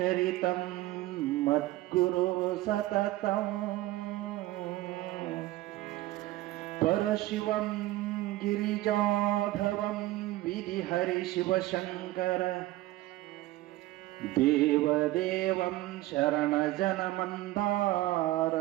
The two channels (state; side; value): quieter; left; 17.0 dB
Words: ಮದ್ಗುರು ಸತತಂ ಪರಶಿವಂ ಗಿರಿಜಾಧವಂ ವಿಧಿಹರಿ ಶಿವಶಂಕರ ದೇವದೇವಂ ಶರಣಜನಮಂದಾರ